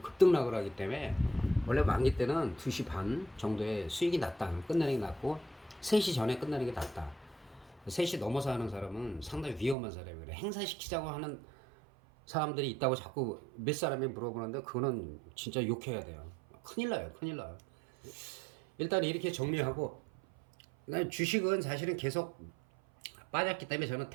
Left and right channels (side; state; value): left; drops out; at 9.8 s